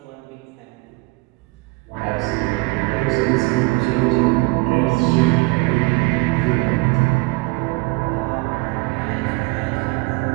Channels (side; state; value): left; quieter; 25.3 dB